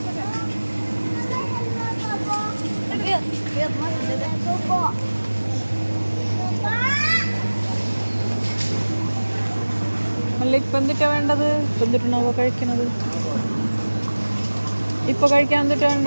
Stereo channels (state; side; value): inverted; both; correlation -1.00